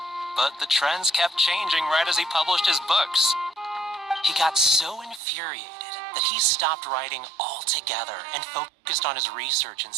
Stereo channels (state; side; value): drops out; left; at 5.2 s